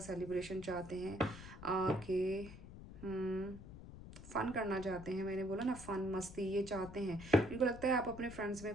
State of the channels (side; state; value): left; noise; rumble, 14 dB below the sound